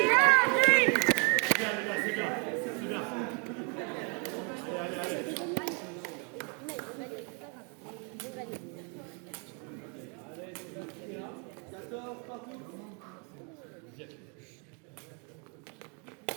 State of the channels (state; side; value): quieter; left; 35.6 dB